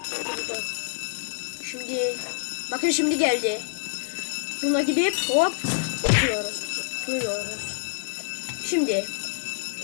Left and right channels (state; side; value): silent; right; digital silence